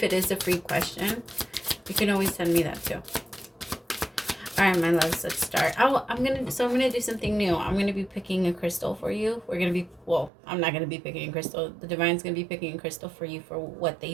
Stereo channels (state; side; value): drops out; left; at 10.3 s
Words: it is a free question, you can always send me that too. All right, my loves, let's start. I'm gonna do something new. I'm gonna be picking a crystal for you. I'm not gonna be picking a crystal. The divine's gonna be picking a crystal for you for what